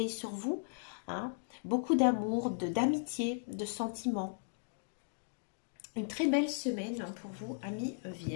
sur vous. Hein. Beaucoup d'amour, d'amitié, de sentiments. Une très belle semaine pour vous, amis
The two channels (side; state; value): right; silent; digital silence